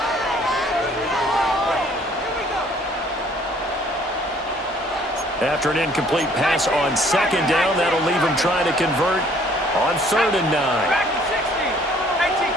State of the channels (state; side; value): normal; both; correlation 0.59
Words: After an incomplete pass on 2nd down, that'll leave him trying to convert on 3rd and 9.